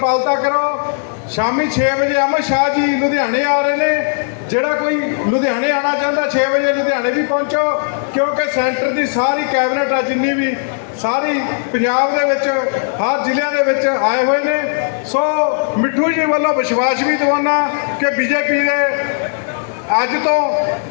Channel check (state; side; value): silent; right; digital silence